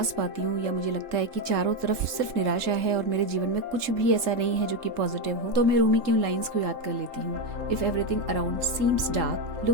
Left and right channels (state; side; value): late; left; 3.3 ms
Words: पाती हूँ या मुझे लगता है कि चारों तरफ सिर्फ निराशा है और मेरे जीवन में कुछ भी ऐसा नहीं है जो कि पॉजिटिव हो, तो मैं रूमी की उन लाइंस को याद कर लेती हूँ। If everything around seems dark,